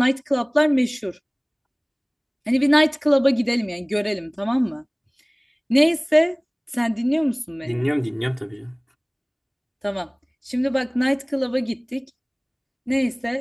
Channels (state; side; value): identical; both; correlation 1.00